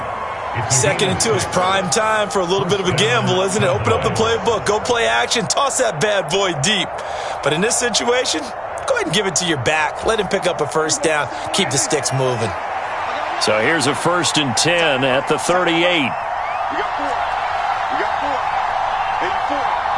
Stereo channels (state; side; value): identical; both; correlation 1.00